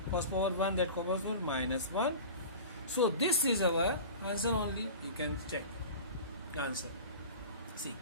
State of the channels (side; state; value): both; inverted; correlation -0.36